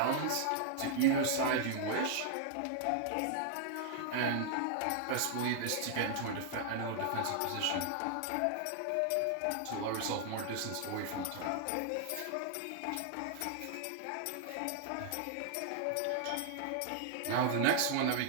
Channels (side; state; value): both; different; correlation 0.00